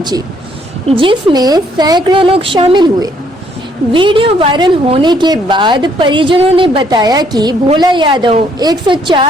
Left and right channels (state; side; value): normal; both; correlation 0.67